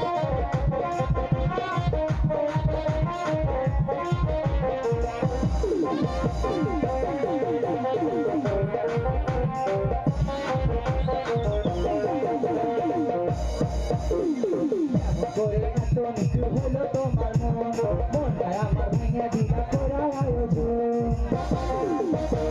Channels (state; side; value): identical; both; correlation 1.00